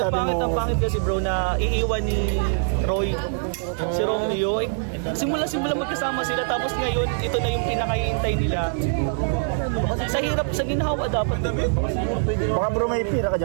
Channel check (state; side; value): silent; left; digital silence